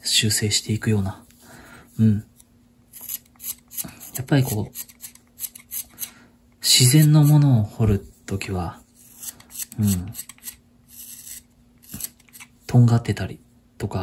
修正していくような。やっぱりこう、自然のものを彫るときは、とんがってたりと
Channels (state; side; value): identical; both; correlation 1.00